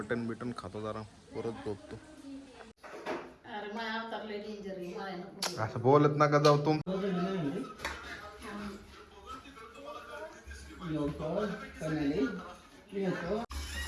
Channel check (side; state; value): both; identical; correlation 1.00